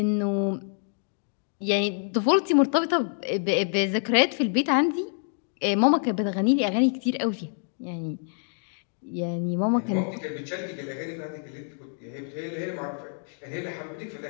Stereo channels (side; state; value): right; silent; 60 dB below the other